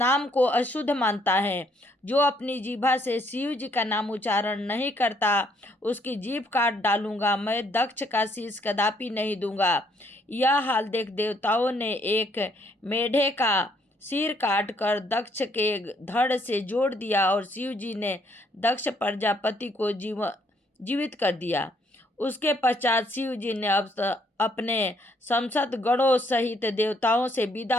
को अशुद्ध मानता है। जो अपनी जीभा से शिव जी का नाम उच्चारण नहीं करता, उसकी जीभ काट डालूंगा। मैं दक्ष का शीश कदापि नहीं दूंगा। यह हाल देख देवताओं ने एक मेढे का सिर काट कर दक्ष के धड़ से जोड़ दिया और शिव जी ने दक्ष प्रजापति को जीवित कर दिया। उसके पश्चात शिव जी ने अपने संसद गणों सहित देवताओं से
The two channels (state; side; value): normal; both; correlation 0.68